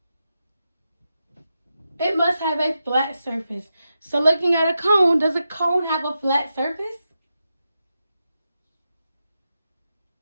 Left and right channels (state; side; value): inverted; both; correlation -0.88